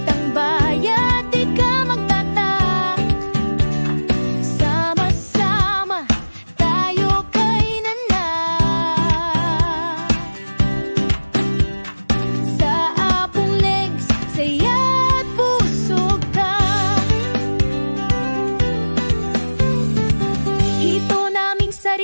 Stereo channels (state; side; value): inverted; both; correlation -1.00